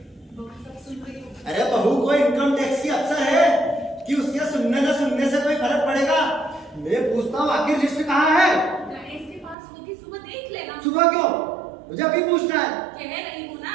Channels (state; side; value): drops out; left; at 9.6 s